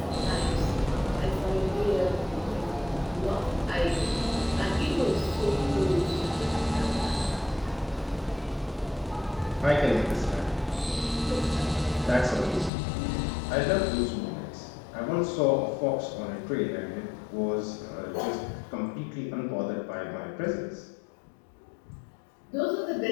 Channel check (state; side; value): drops out; right; at 12.7 s